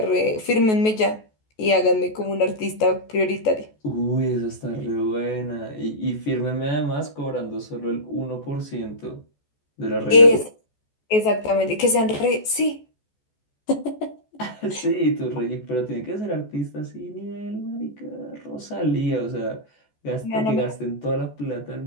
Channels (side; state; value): right; late; 14 ms